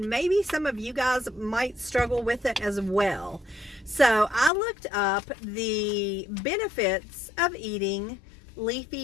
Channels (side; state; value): right; drops out; at 4.5 s